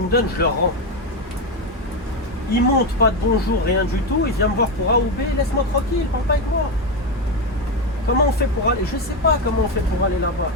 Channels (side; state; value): both; normal; correlation 0.11